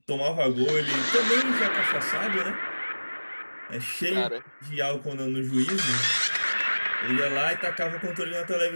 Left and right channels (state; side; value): inverted; both; correlation -1.00